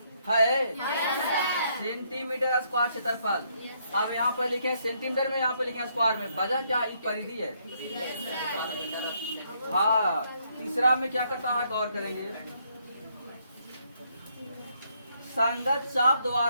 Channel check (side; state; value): both; inverted; correlation -0.72